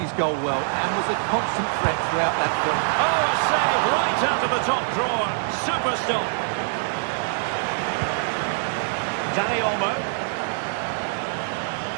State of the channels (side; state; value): left; silent; digital silence